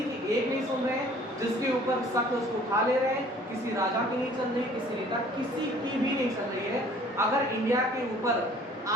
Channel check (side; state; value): both; normal; correlation 0.54